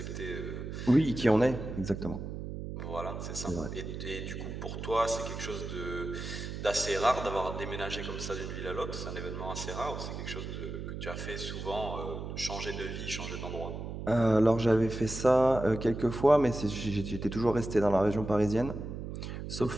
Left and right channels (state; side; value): noise; right; hum, 7 dB below the sound